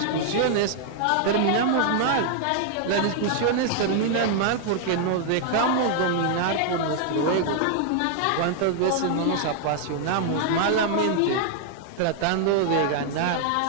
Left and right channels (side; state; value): both; different; correlation -0.01